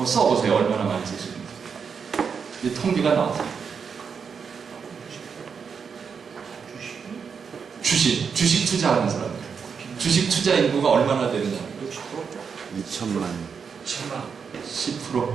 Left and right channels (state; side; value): quieter; left; 6.2 dB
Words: 써보세요. 얼마나 많이 쓰시는지. 이 통계가 나왔어요. 주식 투자하는 사람들. 주식 투자 인구가 얼마나 되느냐. 2천만. 10%.